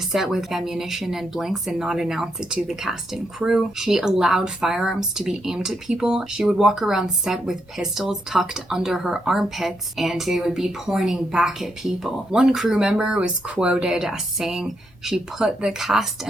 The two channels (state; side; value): normal; both; correlation 0.80